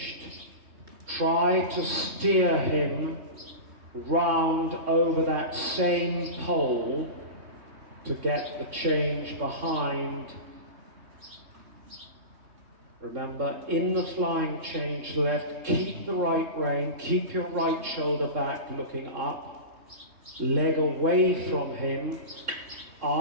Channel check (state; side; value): late; left; 3.2 ms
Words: try to steer him round over that same pole to get the change behind. Remember, in the flying change left, keep the right rein, keep your right shoulder back looking up, leg away from him,